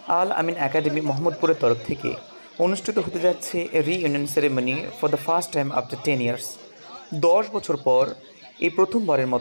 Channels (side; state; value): both; inverted; correlation -1.00